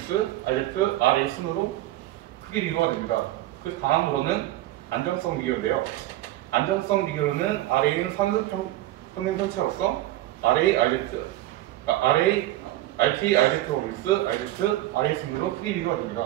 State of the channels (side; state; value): left; quieter; 15.6 dB